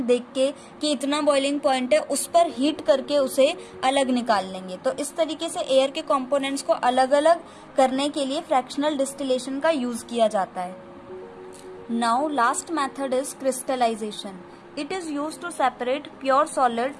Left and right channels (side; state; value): both; identical; correlation 1.00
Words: देख के कि इतना बॉइलिंग पॉइंट है, उस पर हीट करके उसे अलग निकाल लेंगे। तो इस तरीके से एयर के कंपोनेंट्स को अलग अलग करने के लिए फ्रैक्शनल डिस्टिलेशन का यूज किया जाता है। Now last method is crystallization. It is used to separate pure solid